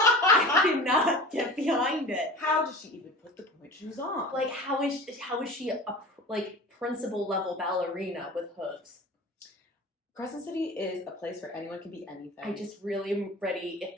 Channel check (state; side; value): normal; both; correlation 0.36